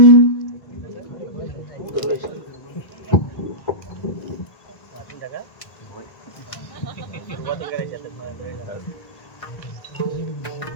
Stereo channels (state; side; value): late; right; 1.5 ms